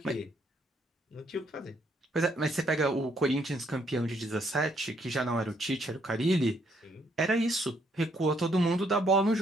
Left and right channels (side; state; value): both; normal; correlation 0.70